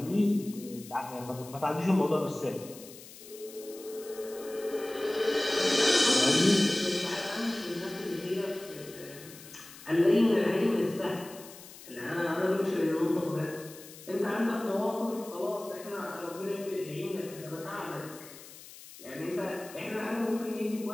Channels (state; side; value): noise; left; hiss, 17 dB below the sound